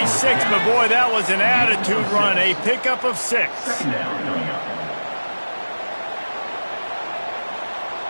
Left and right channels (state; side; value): inverted; both; correlation -1.00